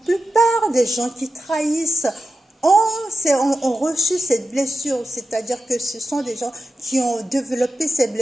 plupart des gens qui trahissent ont reçu cette blessure, c'est-à-dire que ce sont des gens qui ont développé ces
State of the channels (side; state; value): both; normal; correlation 0.92